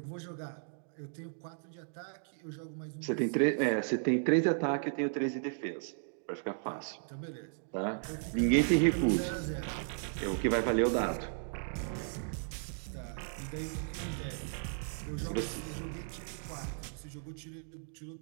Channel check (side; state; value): left; silent; digital silence